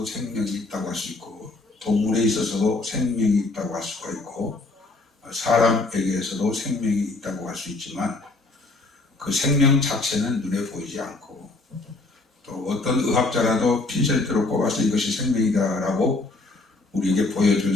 생명이 있다고 할 수 있고, 동물에 있어서도 생명이 있다고 할 수가 있고, 사람에게서도 생명이 있다고 할 수 있지만, 그 생명 자체는 눈에 보이지 않고, 또 어떤 의학자라도 핀셋으로 꼽아서 이것이 생명이다라고 우리에게 보여줄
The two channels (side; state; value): right; quieter; 3.3 dB